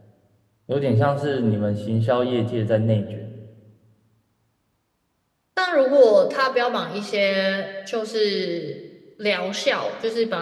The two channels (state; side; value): identical; both; correlation 1.00